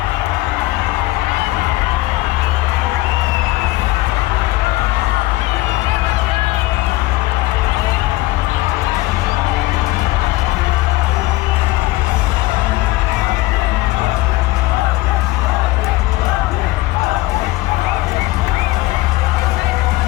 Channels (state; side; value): quieter; right; 19.0 dB